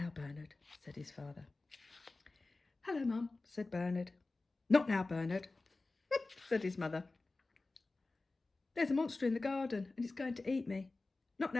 Bernard, said his father. Hello, Mum, said Bernard. Not now, Bernard, said his mother. There's a monster in the garden and it's going to eat me. Not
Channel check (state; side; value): quieter; right; 3.4 dB